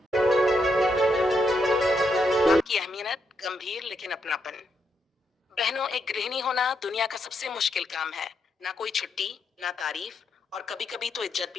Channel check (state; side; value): normal; both; correlation 0.79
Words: आपकी अहमियत गंभीर लेकिन अपनापन। बहनों, एक गृहिणी होना दुनिया का सबसे मुश्किल काम है। ना कोई छुट्टी, ना तारीफ, और कभी कभी तो इज्जत